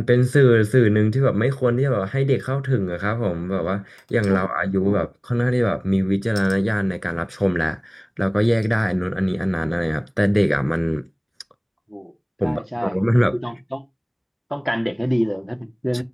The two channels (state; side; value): identical; both; correlation 1.00